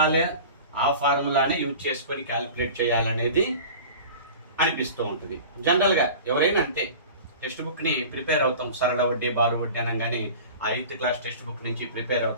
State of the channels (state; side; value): inverted; both; correlation -0.38